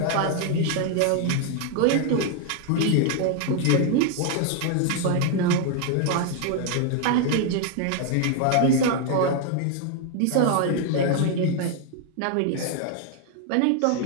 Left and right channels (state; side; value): different; both; correlation 0.00